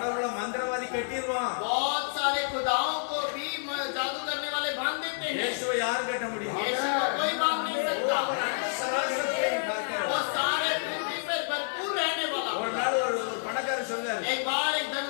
மந்திரவாதி கட்டிடுவான். बहुत सारे खुदाओं को भी जादू करने वाले बांध देते हैं। இயேசுவை யார் கட்ட முடியும்? यीशु को कोई बांध नहीं அவர் सकता। அண்ட சராசரத்தையும் பார்க்கிறவர். वो सारे पृथ्वी पर भरपूर रहने वाला। ஒரு நாள் ஒரு பணக்காரர் சொல்றாரு, एक बार एक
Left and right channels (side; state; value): right; silent; digital silence